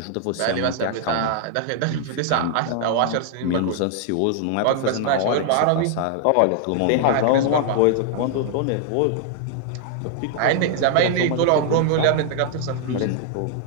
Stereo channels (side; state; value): both; different; correlation 0.00